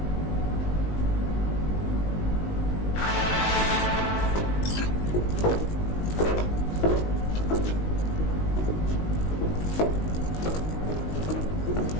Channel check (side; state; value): right; late; 19 ms